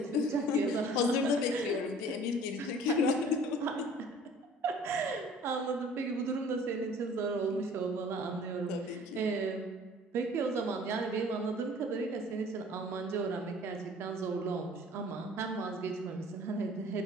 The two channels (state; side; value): normal; both; correlation 0.50